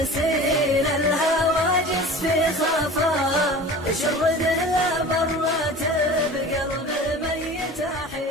الهواجس في خفا شرده لا مرات بقلب ميت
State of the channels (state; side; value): normal; both; correlation 0.39